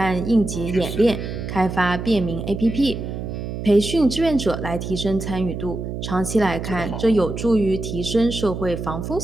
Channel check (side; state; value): right; noise; hum, 6 dB below the sound